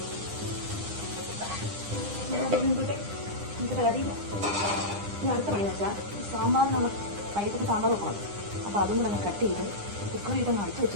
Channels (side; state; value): left; late; 9.9 ms